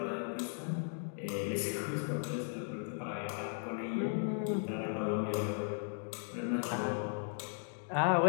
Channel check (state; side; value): silent; right; 53 dB below the other